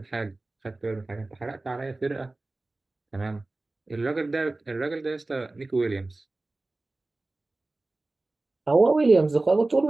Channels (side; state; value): left; quieter; 3.0 dB